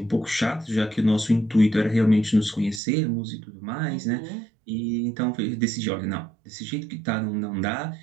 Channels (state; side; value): drops out; left; at 2.8 s